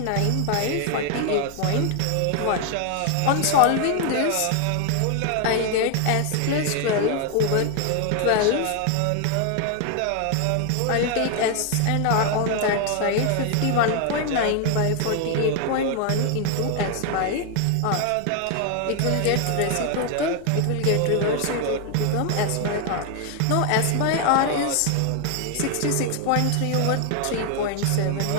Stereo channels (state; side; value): different; both; correlation 0.00